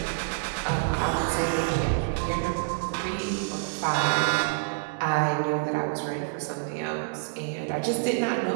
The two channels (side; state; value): left; silent; digital silence